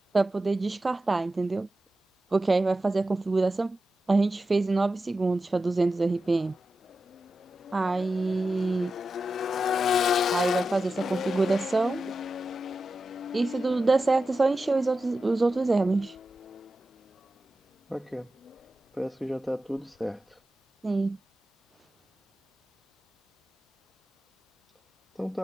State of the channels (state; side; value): normal; both; correlation 0.92